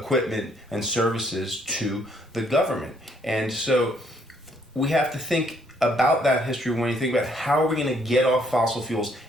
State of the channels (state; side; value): normal; both; correlation 0.68